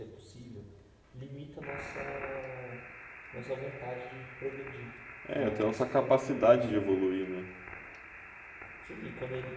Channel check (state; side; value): identical; both; correlation 1.00